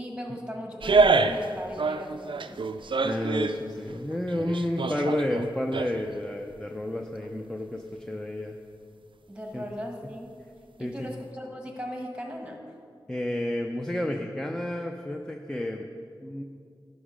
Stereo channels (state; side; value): normal; both; correlation 0.70